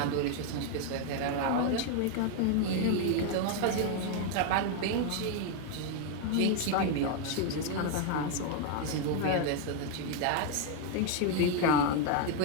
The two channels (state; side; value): different; both; correlation 0.00